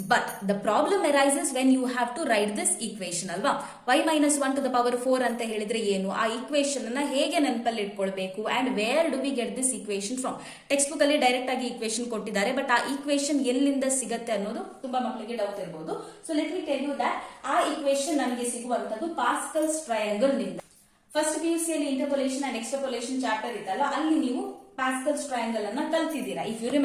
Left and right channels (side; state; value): both; identical; correlation 1.00